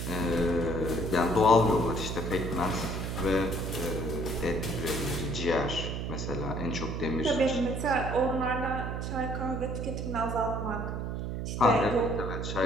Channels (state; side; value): noise; right; hum, 3 dB below the sound